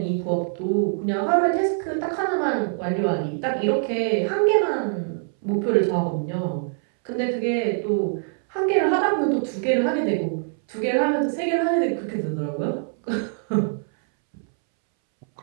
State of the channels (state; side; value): silent; left; 63 dB below the other